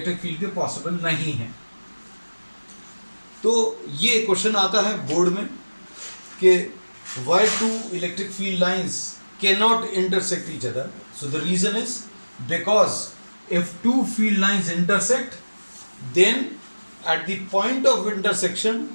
फील्ड के पॉसिबल नहीं है. तो ये क्वेश्चन आता है बोर्ड में कि why two electric field lines cannot intersect each other. So the reason is because if two field lines intersect, then at the point of intersection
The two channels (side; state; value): both; inverted; correlation -1.00